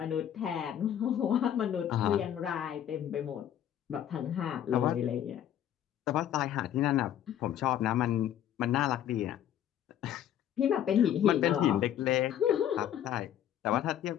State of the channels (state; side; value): quieter; right; 10.7 dB